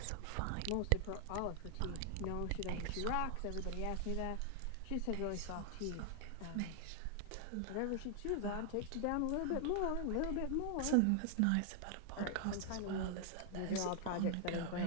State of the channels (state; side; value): different; both; correlation 0.00